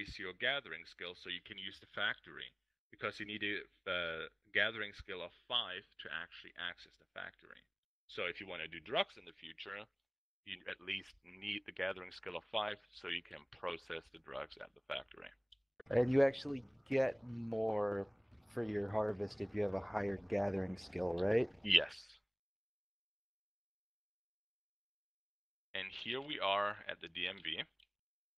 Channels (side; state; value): both; identical; correlation 1.00